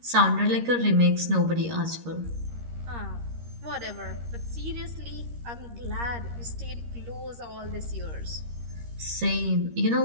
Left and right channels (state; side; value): late; left; 13 ms